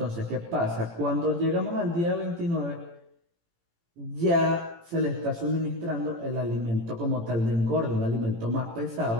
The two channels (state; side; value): late; left; 18 ms